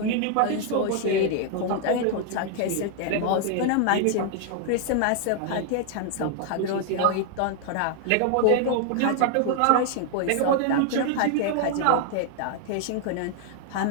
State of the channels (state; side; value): different; both; correlation 0.00